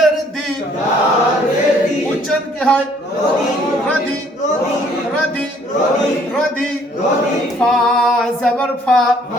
দি উচ্চারণ কি হয় রদি রদি রদি ফা জাবার ফা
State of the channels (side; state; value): both; normal; correlation 0.62